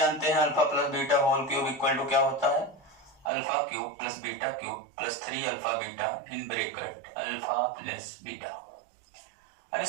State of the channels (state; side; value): drops out; left; at 3.3 s